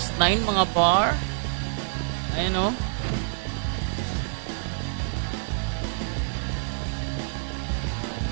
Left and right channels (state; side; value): silent; left; digital silence